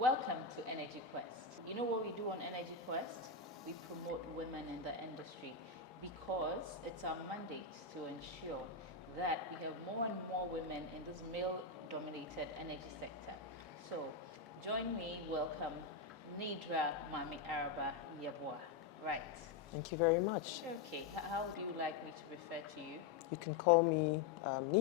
to Energy Quest. You know what we do on Energy Quest? We promote women in the industry because it's our mandate to ensure that we have more and more women in this male-dominated energy sector. So join me, welcome Nidra Mami Araba Yebuah. Right. Thank you very much. Okay, how do you like me to refer to you? You can call me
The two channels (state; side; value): quieter; right; 4.9 dB